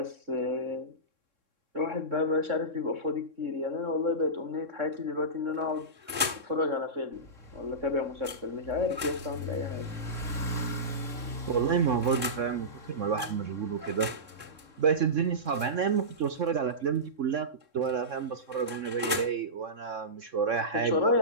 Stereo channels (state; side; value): late; left; 3.6 ms